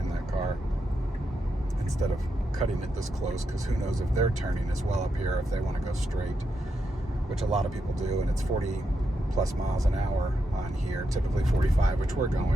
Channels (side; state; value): both; normal; correlation 0.84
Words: that car instead of cutting it this close, because who knows if they're turning as well up here if they want to go straight, which a lot of people do, and it's 40 plus miles an hour on here, typically 45, which we're